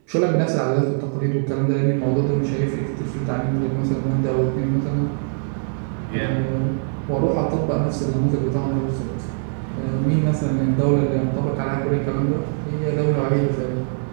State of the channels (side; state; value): left; silent; 64 dB below the other